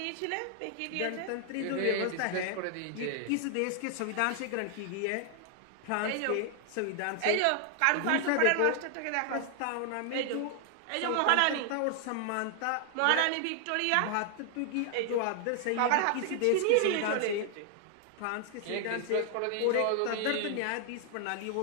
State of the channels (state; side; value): different; both; correlation 0.00